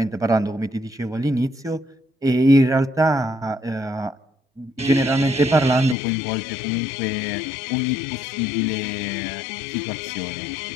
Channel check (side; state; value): right; drops out; at 6.0 s